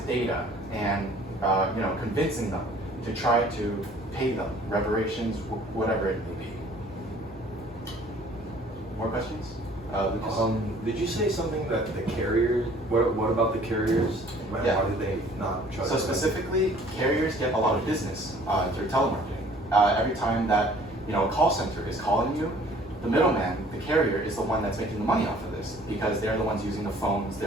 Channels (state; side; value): normal; both; correlation 0.54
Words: data and convincing them to try to pay them reparations, whatever it may be. More questions? Lucas? Did you say something that the carriers, what about the carriers? Why do they not trust So specifically, carriers get a lot of business through telemarketing. Every time that a call center is calling you, the middleman, the carrier, is the one that's making the money off of this, because they're the ones using the phones,